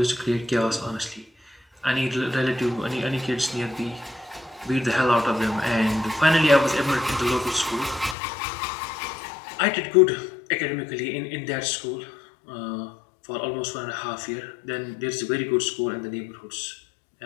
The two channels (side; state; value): right; drops out; at 8.2 s